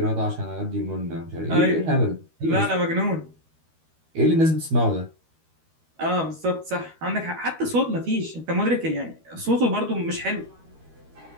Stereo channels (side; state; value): left; late; 13 ms